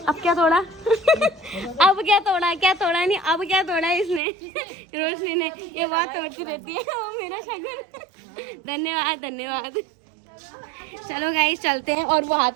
क्या तोड़ा? अब क्या तोड़ा? क्या तोड़ा नहीं, अब क्या तोड़ा इसने? रोशनी ने। ये बहुत तोड़ती रहती है वो मेरा शगुन। धन्यवाद धन्यवाद। चलो गाइस चलते हैं। और वो हाथ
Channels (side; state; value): left; drops out; at 4.2 s